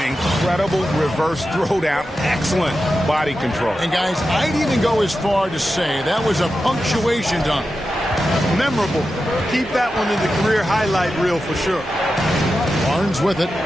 Incredible reverse throwdown. Excellent body control. And guys, I'd even go as far to say that was a punctuation dunk. Memorable. Keep that one in the career highlight reel for sure. Barnes with it.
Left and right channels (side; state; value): both; normal; correlation 0.91